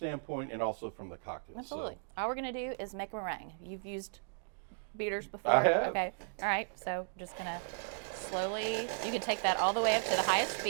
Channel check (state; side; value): silent; left; digital silence